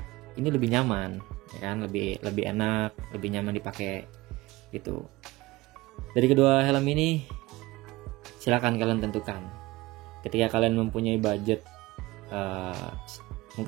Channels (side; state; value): left; quieter; 20.0 dB